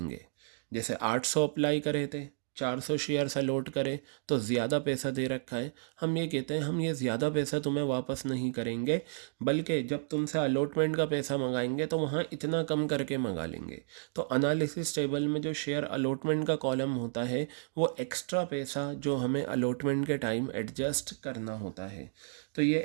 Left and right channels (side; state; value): left; silent; digital silence